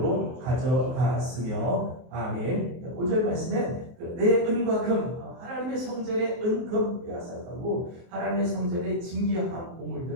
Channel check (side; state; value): left; late; 23 ms